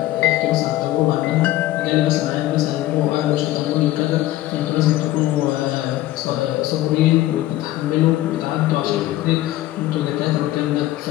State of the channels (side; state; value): right; quieter; 15.5 dB